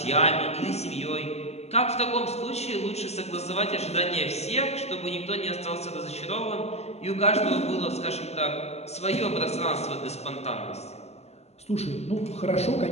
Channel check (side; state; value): right; late; 0.31 ms